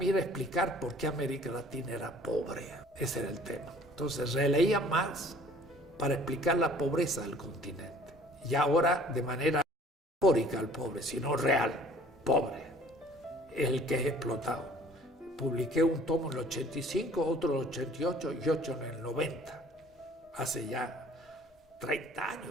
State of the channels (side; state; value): both; normal; correlation 0.53